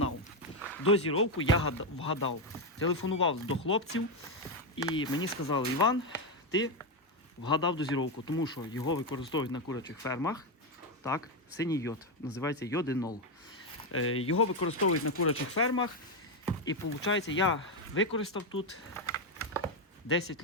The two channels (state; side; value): normal; both; correlation 0.06